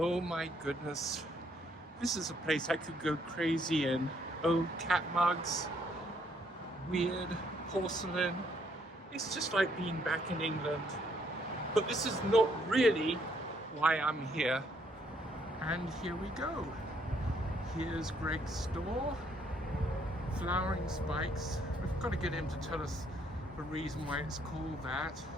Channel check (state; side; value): normal; both; correlation 0.69